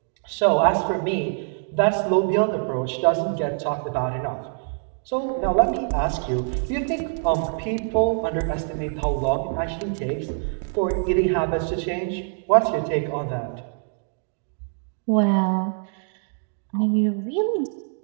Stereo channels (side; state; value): left; silent; 62 dB below the other